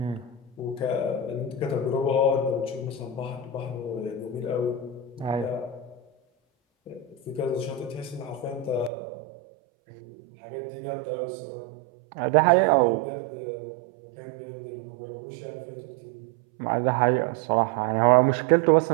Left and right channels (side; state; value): left; drops out; at 8.9 s